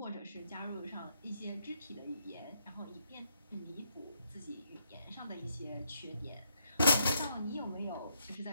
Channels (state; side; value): inverted; both; correlation -0.76